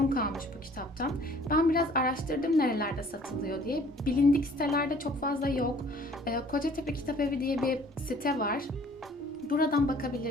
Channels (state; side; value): normal; both; correlation 0.54